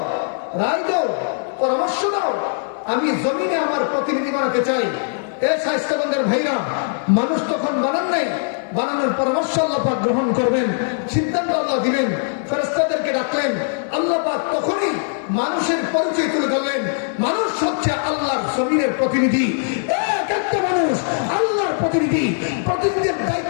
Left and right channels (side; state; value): right; silent; digital silence